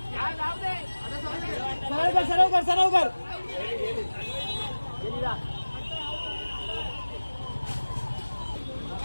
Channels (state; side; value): inverted; both; correlation -1.00